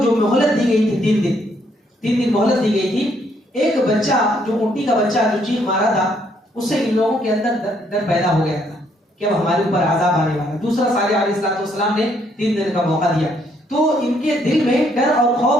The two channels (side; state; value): both; normal; correlation 0.70